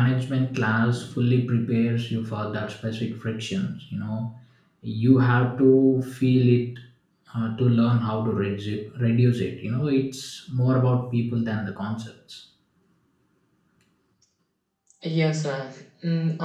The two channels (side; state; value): both; identical; correlation 1.00